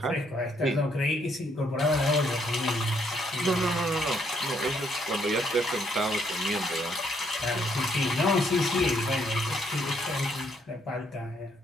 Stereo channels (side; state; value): both; normal; correlation 0.71